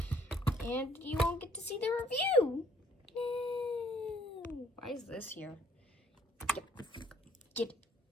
And you won't get to see the review. No. Why is this here? Get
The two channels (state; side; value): normal; both; correlation 0.62